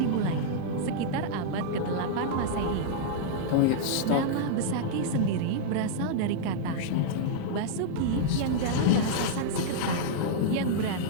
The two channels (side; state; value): both; different; correlation -0.02